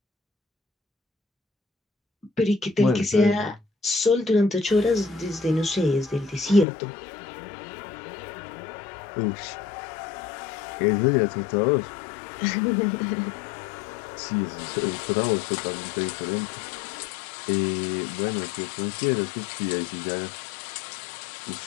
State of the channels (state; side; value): drops out; right; at 6.7 s